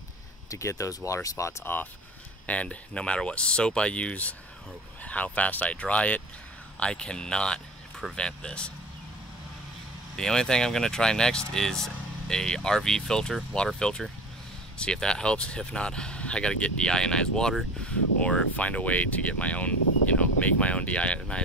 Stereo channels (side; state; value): both; normal; correlation 0.38